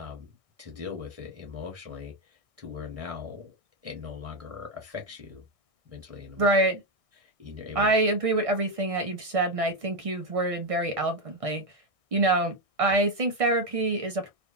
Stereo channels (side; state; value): left; late; 1.6 ms